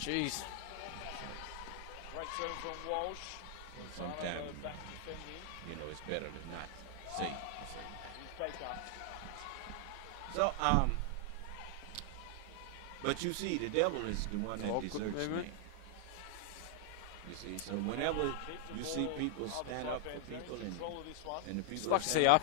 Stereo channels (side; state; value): both; different; correlation 0.00